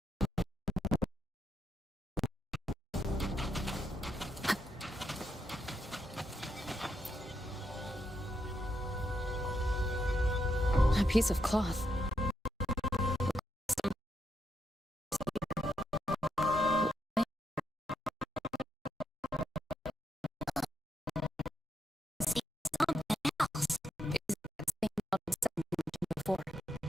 A piece of cloth.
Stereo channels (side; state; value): both; normal; correlation 0.81